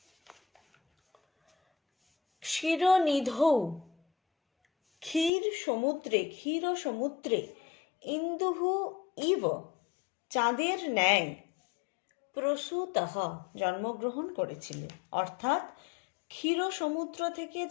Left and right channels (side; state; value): right; drops out; at 5.3 s